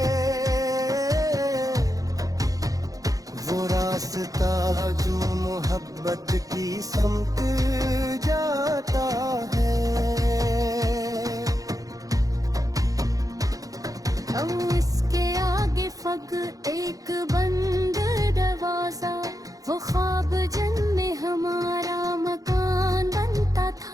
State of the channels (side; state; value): left; late; 0.17 ms